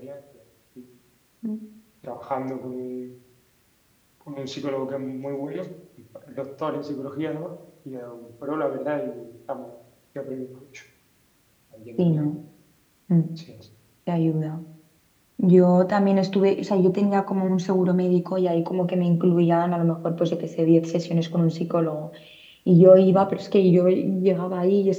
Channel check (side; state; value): both; identical; correlation 1.00